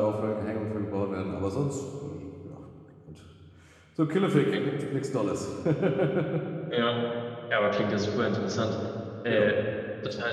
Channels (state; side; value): identical; both; correlation 1.00